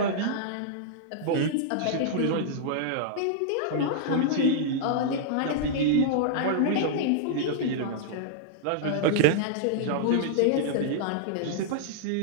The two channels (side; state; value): both; different; correlation -0.01